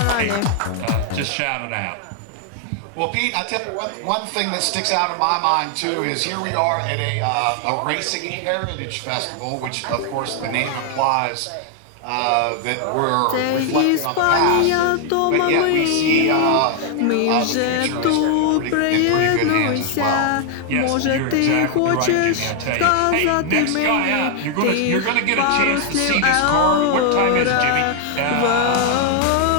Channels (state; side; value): different; both; correlation 0.00